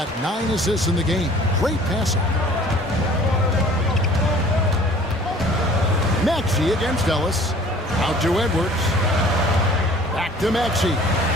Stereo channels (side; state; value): both; normal; correlation 0.50